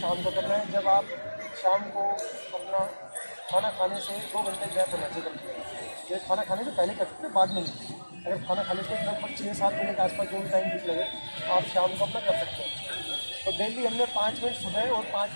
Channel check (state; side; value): inverted; both; correlation -1.00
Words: को करना है, जब आप शाम को अपना खाना खाने से 2 घंटे गैप होना चाहिए। ये खाना खाने से पहले कर सकते हैं, बाद में नहीं। अगर खाना खाने से लगभग 6-7 बजे के आसपास जो भी टाइम ठीक लगे आप शाम को अपना कर सकते हैं। तो डेली हमने 5 मिनट सुबह और